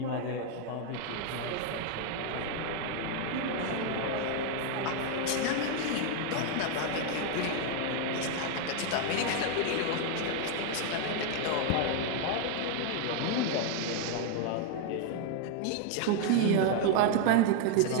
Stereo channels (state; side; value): different; both; correlation 0.00